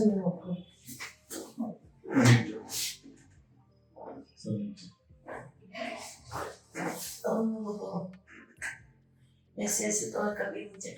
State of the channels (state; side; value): identical; both; correlation 1.00